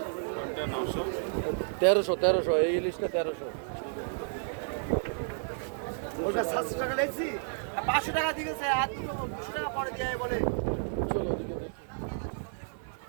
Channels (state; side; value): silent; left; 57 dB below the other